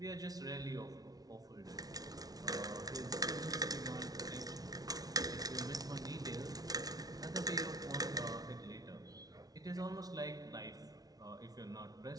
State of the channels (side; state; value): left; late; 0.18 ms